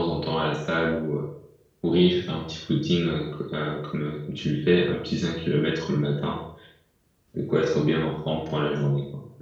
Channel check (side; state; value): both; identical; correlation 1.00